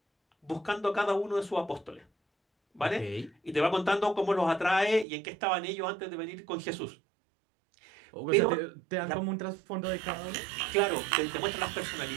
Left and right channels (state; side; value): drops out; left; at 5.1 s